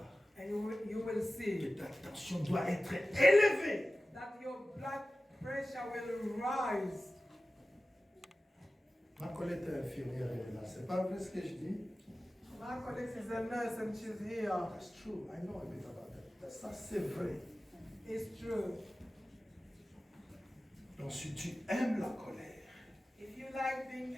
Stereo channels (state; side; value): normal; both; correlation 0.96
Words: and you will see que ta tension doit être élevée. that your blood pressure will rise. Ma collègue est infirmière, elle est là. C'est pas vrai ce que je dis? My colleague is a nurse and she's here. That's true. I know a bit about that. Ça, c'est vrai. It's true. Donc, si tu aimes la colère, If you like being